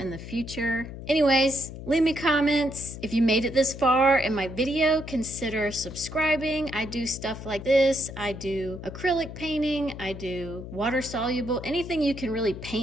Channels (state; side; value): noise; left; hum, 11 dB below the sound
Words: the future. Anyways, leave me comments. If you made it this far in my video, consider subscribing. I do stuff like this. I do acrylic painting. I do water soluble. Anything you can really